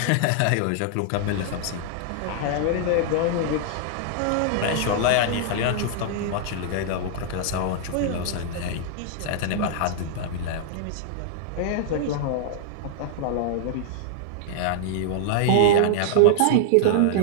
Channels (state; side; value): different; both; correlation -0.01